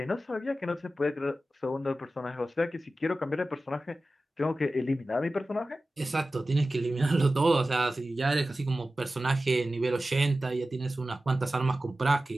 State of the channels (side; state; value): both; normal; correlation 0.95